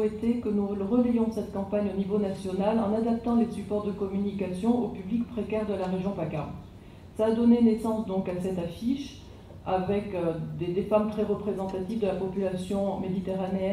que nous relayions cette campagne au niveau national en adaptant les supports de communication au public précaire de la région PACA. Ça a donné naissance donc à cette affiche avec des femmes très représentatives de la population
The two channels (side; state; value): both; identical; correlation 1.00